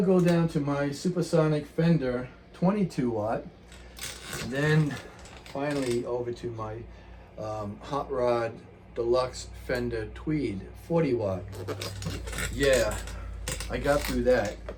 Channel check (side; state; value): both; identical; correlation 1.00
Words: go down to my Supersonic Fender 22 watt. Then finally over to my Hot Rod Deluxe Fender Tweed 40 watt. Yeah, I got through that.